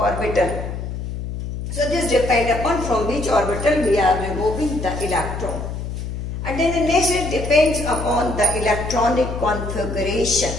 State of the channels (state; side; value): noise; left; hum, 6 dB below the sound